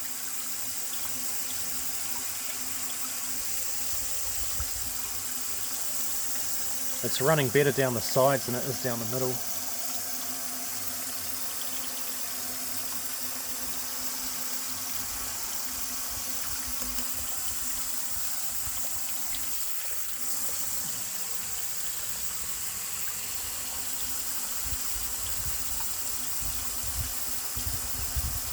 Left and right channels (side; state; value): both; identical; correlation 1.00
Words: It's running better down the sides than it is down the middle.